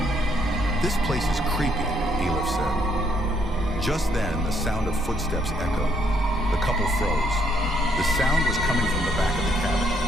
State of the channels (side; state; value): both; normal; correlation 0.71